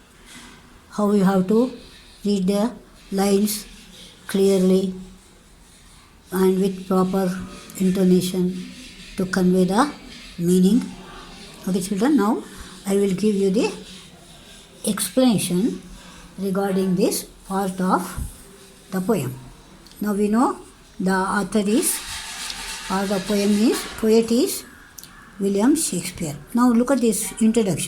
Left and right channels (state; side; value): identical; both; correlation 1.00